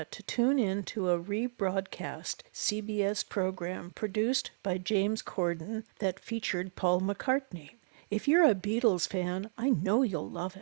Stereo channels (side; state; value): left; silent; 56 dB below the other